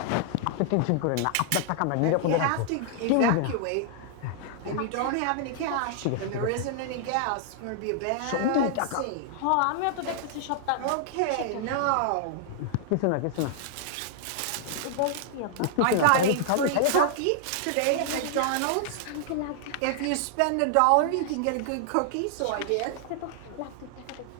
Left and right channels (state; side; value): different; both; correlation -0.01